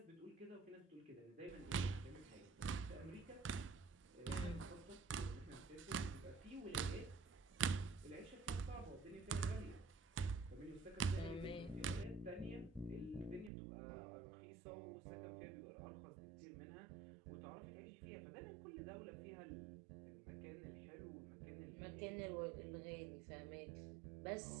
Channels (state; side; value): drops out; left; at 13.5 s